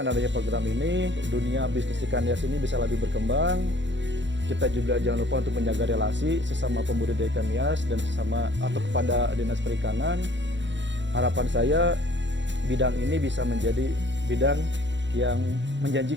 adanya program ini, dunia bisnis ikan hias ini bisa lebih berkembang. Kita juga jangan lupa untuk menjaga relasi sesama pembudidaya ikan hias dan sesama atau kepada Dinas Perikanan. Harapan saya bidang ini bisa menjadi bidang yang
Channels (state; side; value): late; left; 0.53 ms